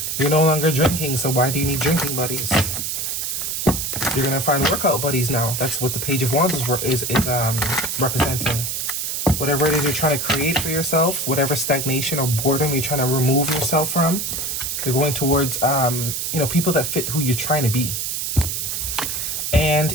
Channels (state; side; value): noise; right; hiss, 2 dB below the sound